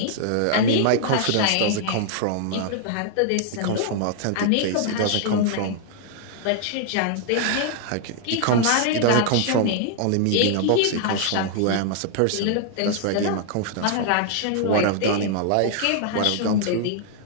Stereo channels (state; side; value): different; both; correlation 0.00